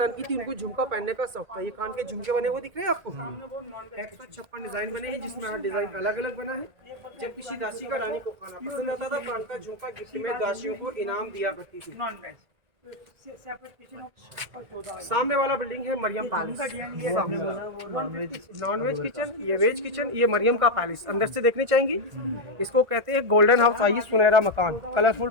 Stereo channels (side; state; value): left; late; 1.9 ms